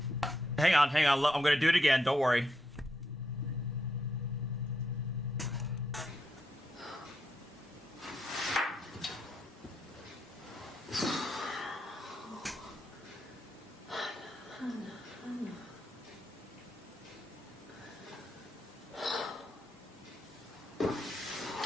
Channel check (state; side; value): normal; both; correlation 0.81